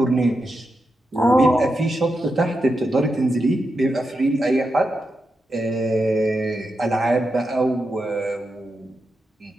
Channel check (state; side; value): normal; both; correlation 0.87